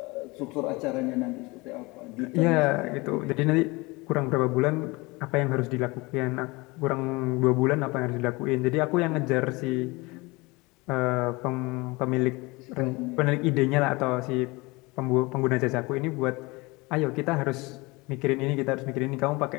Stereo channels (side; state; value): right; quieter; 24.2 dB